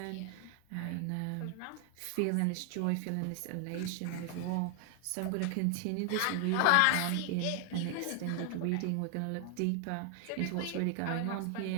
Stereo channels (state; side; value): different; both; correlation 0.00